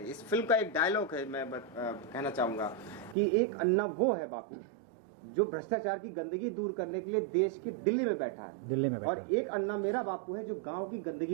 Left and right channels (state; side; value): drops out; left; at 3.2 s